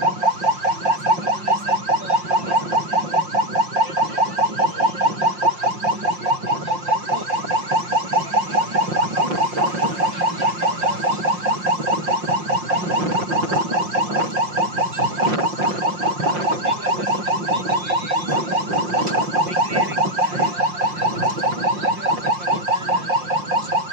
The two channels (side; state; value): left; late; 5.6 ms